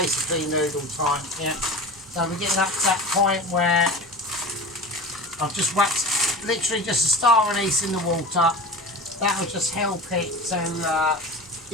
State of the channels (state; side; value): normal; both; correlation 0.32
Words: noodle time. Yeah, so we're getting up to that point where I've just whacked literally just a star anise in the water. That will just help it to